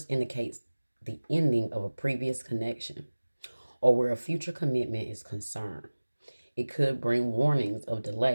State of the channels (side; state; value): both; inverted; correlation -1.00